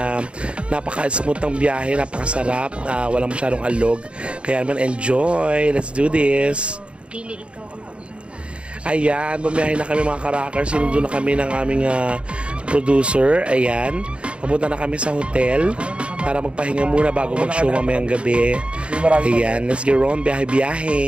napaka-smooth ng biyahe, napakasarap, walang masyadong alog. Kaya naman enjoy. Let's do this. Dili ikaw ang Ayan, bumiyahe na kami mga ka-rockers. Sinundo na kami ng aming producer. Ayan, papunta na kami sa hotel para magpahinga muna bago mag-show mamayang gabi. Ayan, let's get on,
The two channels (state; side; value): late; left; 0.058 ms